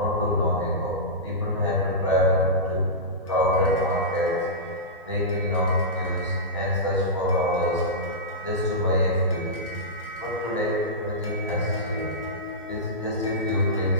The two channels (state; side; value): normal; both; correlation -0.16